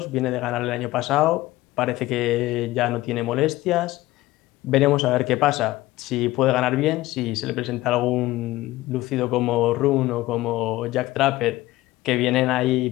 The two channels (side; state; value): right; quieter; 17.6 dB